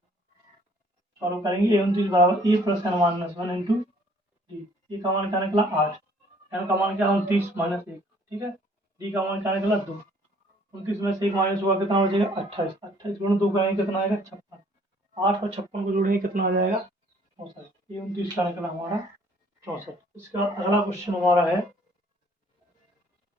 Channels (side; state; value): both; normal; correlation 0.59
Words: सॉल्व करेंगे। ए 29 बराबर A plus N minus 1 into D. A का मान क्या निकला 8, एन का मान क्या 29 माइनस 1। ठीक है, डी का मान क्या निकला 2। 29 में से 1 माइनस हुआ, कितना हो जाएगा 28। 28 गुणा 2 करेंगे, कितना आएगा 56। 8 और 56 को जोड़ेंगे, कितना हो जाएगा 64। ये 29 का निकला हमारा 64। इसका अगला क्वेश्चन हमारा है